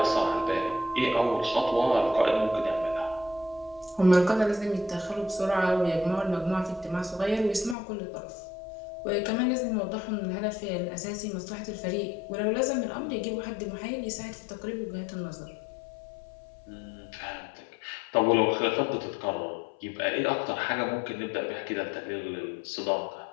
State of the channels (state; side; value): drops out; right; at 7.8 s